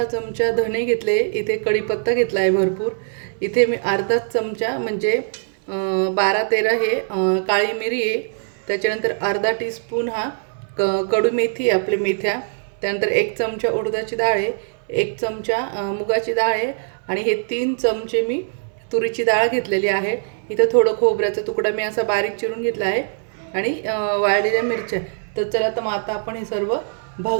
चमचा धणे घेतले, इथे कढीपत्ता घेतला आहे भरपूर, इथे मी अर्धा चमचा म्हणजे 12-13 हे काळी मिरी आहे, त्याच्यानंतर अर्धा टीस्पून हा कडू मेथी आहे आपली मेथ्या, त्यानंतर 1 चमचा उडदाची डाळ आहे, 1 चमचा मुगाची डाळ आहे आणि हे 3 चमचे मी तुरीची डाळ घेतलेली आहे। इथे थोडं खोबऱ्याचा तुकडा मी असा बारीक चिरून घेतला आहे आणि वाळलेल्या मिरच्या। तर चला तर मग आता आपण हे सर्व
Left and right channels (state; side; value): silent; left; 61 dB below the other